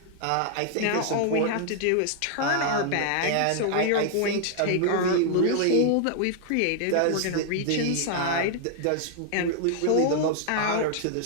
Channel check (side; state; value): both; different; correlation 0.00